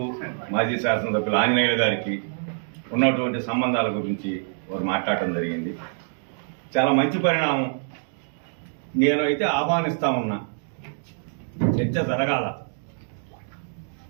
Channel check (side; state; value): left; silent; digital silence